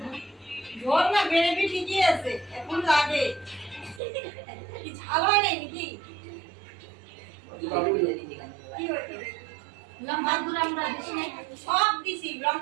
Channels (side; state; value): left; drops out; at 4.0 s